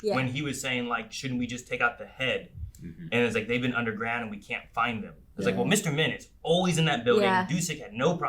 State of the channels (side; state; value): both; identical; correlation 1.00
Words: yeah. When he was saying, like, shouldn't we just take out the head? And it's like, they've been underground and we can't find them. It's like, well, Mr. Min is always in that building. Yeah. Dusek had no